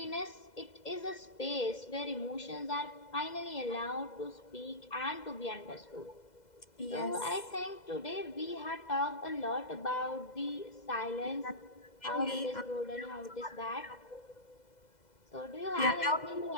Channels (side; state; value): right; late; 2.0 ms